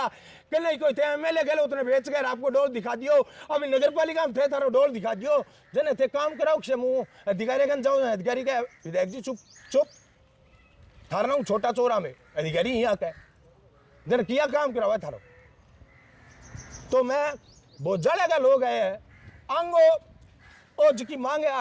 कि नहीं कोई थे एमएलए गए उतने बेच कर आपको डोल दिखा दियो। अभी नगर पालिका में थे थारो डोल दिखा दियो जने थे काम कराओ मुँह अधिकारी कन जाओ अधिकारी का विधायक जी चुप चुप थारा हूँ छोटा चोरा में अधिकारी यहाँ का जन किया काम करावा थारो। तो मैं बोझाड़े का लोग आए हैं आंगो और जिसकी मांग है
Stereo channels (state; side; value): identical; both; correlation 1.00